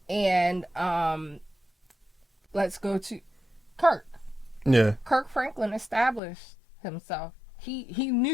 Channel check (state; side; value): drops out; right; at 6.2 s